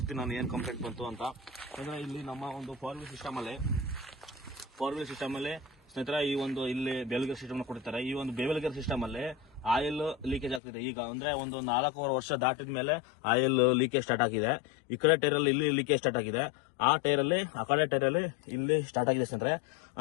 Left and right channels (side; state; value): right; drops out; at 10.6 s